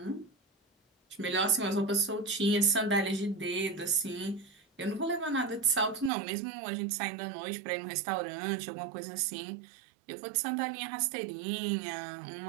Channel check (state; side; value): drops out; left; at 6.1 s